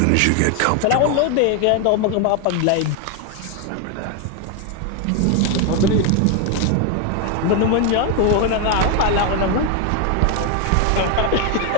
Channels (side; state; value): both; different; correlation 0.01